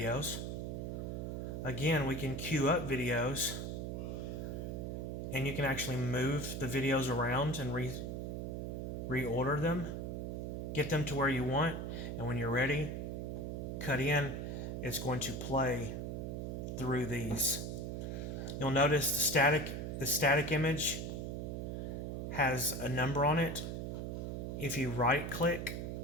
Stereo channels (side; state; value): right; noise; hum, 4 dB below the sound